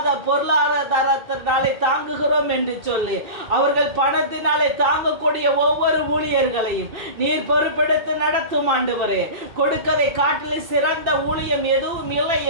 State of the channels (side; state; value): left; late; 2.7 ms